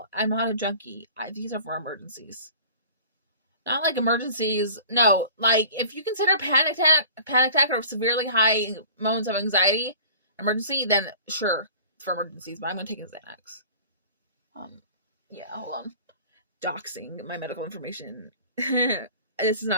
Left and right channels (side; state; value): both; inverted; correlation -0.45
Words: I'm not a junkie. These are for emergencies. Not like emergencies. No, like if you consider panic attack or severely high moments of anxiety emergency, then sure, it's for emergencies. But I'm gonna take a Xanax. Yeah, hold on. Doxing my medical information. This is